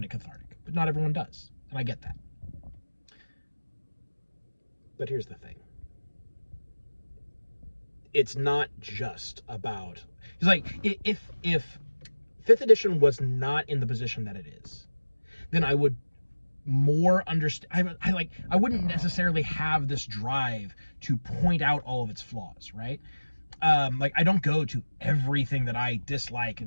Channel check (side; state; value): both; inverted; correlation -1.00